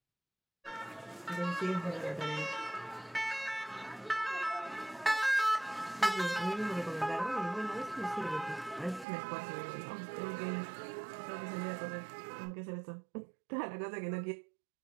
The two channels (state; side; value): drops out; left; at 9.1 s